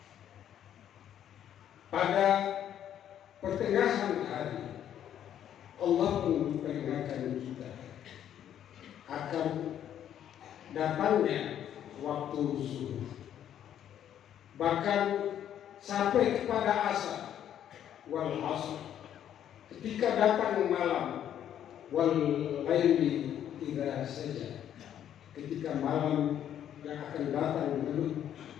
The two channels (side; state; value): right; quieter; 10.3 dB